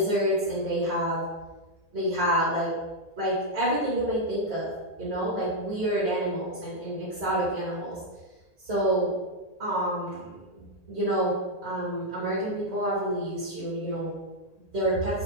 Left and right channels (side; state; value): right; late; 1.8 ms